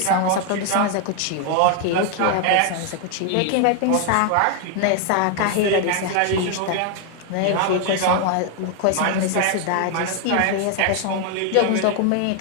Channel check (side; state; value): both; different; correlation 0.00